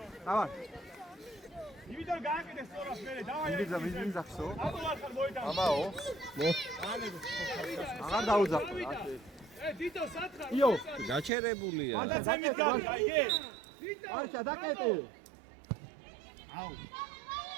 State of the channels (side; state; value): left; drops out; at 11.3 s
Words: დავა. იმიდან გააკეთე სწორად მერე, დავაი. ვიზახსო. ამოვარხარ მოიტანო. ამაო. აღარ დაუძახო. დიდო, სათხარ! იო. გაჩერებულია. გადაცემით გავი, აიგე. არჩა დაკეტე. აუ!